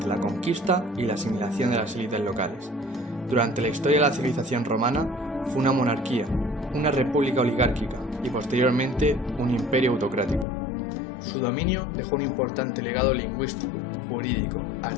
la conquista y la asimilación de las élites locales. Durante la historia de la civilización romana fue una monarquía, una república oligárquica y posteriormente un imperio autocrático. Su dominio dejó un importante legado lingüístico, jurídico,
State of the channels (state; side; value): drops out; right; at 10.5 s